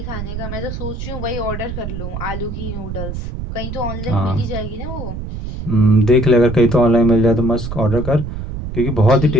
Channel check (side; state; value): right; noise; rumble, 7 dB below the sound